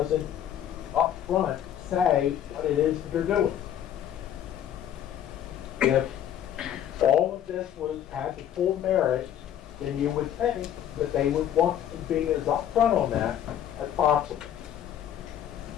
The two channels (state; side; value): quieter; right; 10.4 dB